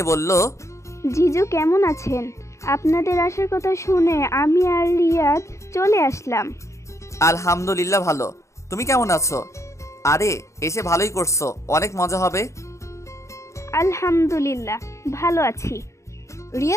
বলল, জিজু কেমন আছেন? আপনাদের আসার কথা শুনে আমি আর রিয়াদ চলে আসলাম। আলহামদুলিল্লাহ ভালো। তুমি কেমন আছো? আরে এসে ভালোই করছো, অনেক মজা হবে। আলহামদুলিল্লাহ ভালো আছি।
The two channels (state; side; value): late; right; 0.14 ms